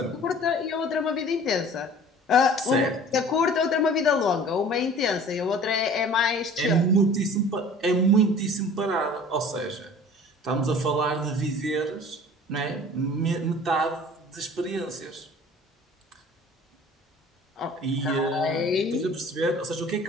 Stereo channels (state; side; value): normal; both; correlation 0.46